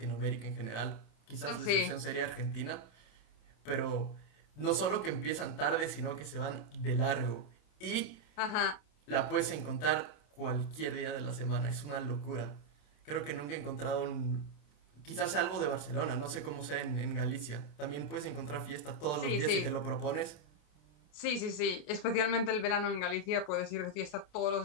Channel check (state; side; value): late; right; 27 ms